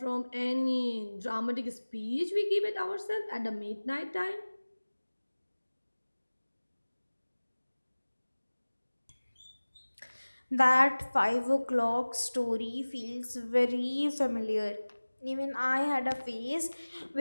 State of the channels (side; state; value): both; inverted; correlation -1.00